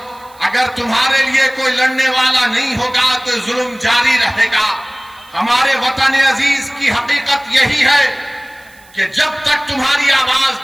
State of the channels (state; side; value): noise; right; hiss, 27 dB below the sound